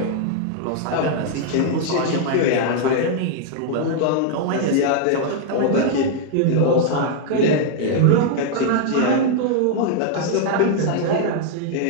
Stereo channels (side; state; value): both; different; correlation -0.01